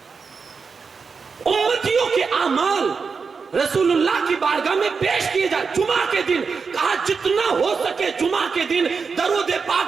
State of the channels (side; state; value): left; quieter; 5.2 dB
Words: امتیوں کے اعمال رسول اللہ کی بارگاہ میں پیش کیے جائے جمعہ کے دن۔ کہا جتنا ہو سکے جمعہ کے دن درود